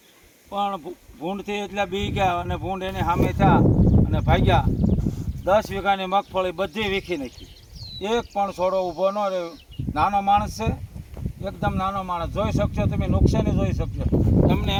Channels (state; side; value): identical; both; correlation 1.00